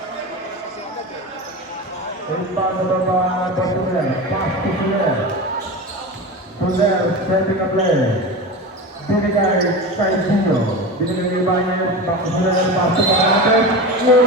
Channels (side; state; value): both; normal; correlation 0.26